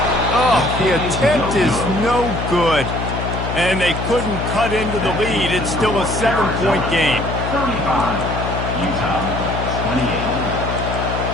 Oh, the attempt is no good. And they couldn't cut into the lead. It's still a 7-point game. 35. Utah 28.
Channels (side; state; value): left; noise; hum, 4 dB below the sound